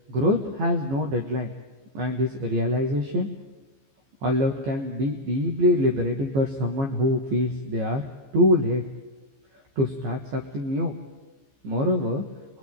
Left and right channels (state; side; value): late; left; 15 ms